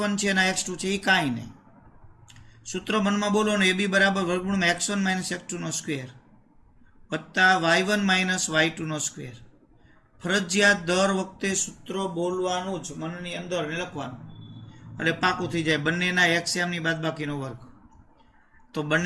છે અને આ x2 છે, એ કાંઈ નહીં. સૂત્ર મનમાં બોલો ને, AB બરાબર વર્ગમૂળમાં x1 માઇનસ x2 નો સ્ક્વેર વત્તા y1 માઇનસ y2 નો સ્ક્વેર. ફરજિયાત દર વખતે સૂત્ર બોલવાનું જ, મનની અંદર લખવાનું, એટલે પાકું થઈ જાય. બંનેના એક્સયામની બાદબાકીનો વર્ગ. તો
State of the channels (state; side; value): identical; both; correlation 1.00